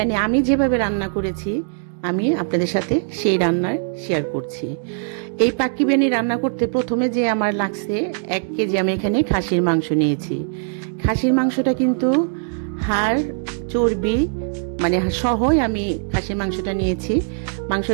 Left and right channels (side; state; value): left; silent; digital silence